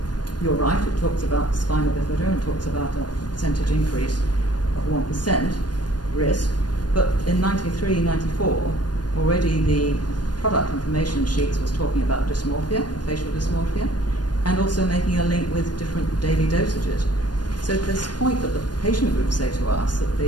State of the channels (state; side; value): late; right; 0.69 ms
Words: you're right, it talks about spina bifida and talks about a percentage increase of 1% risk, but in 93, 94, already the product information sheets was talking about dysmorphia, facial dysmorphia, and also making a link with different daily dosages. So this point that the patient groups say to us that